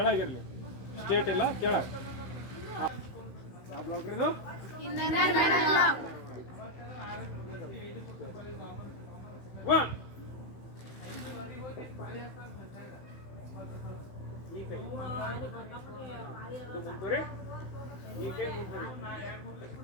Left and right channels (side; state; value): right; late; 15 ms